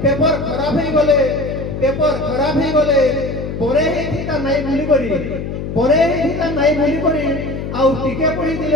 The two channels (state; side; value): noise; left; hum, 6 dB below the sound